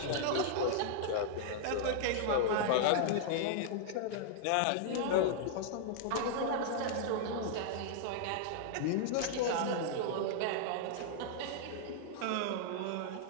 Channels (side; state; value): both; different; correlation -0.01